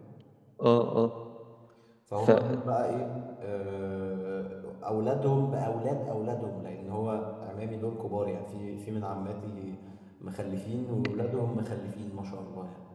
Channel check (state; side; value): identical; both; correlation 1.00